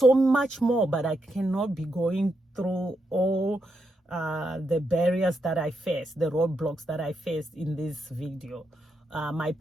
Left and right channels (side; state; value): both; normal; correlation 0.82